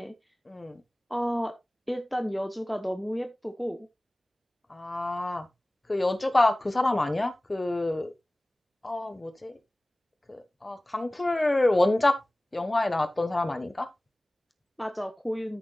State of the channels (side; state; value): both; normal; correlation 0.98